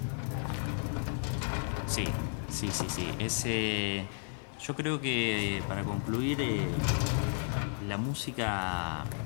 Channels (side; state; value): right; silent; 56 dB below the other